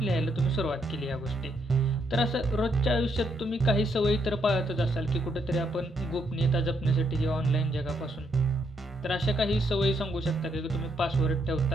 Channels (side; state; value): both; normal; correlation 0.76